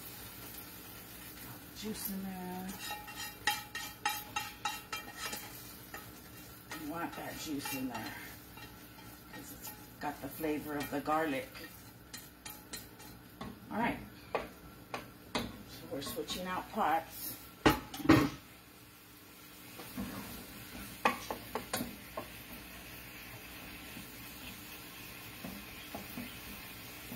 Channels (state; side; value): identical; both; correlation 1.00